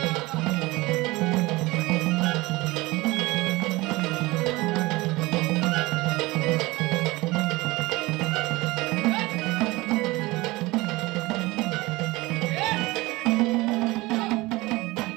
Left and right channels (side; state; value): left; quieter; 21.3 dB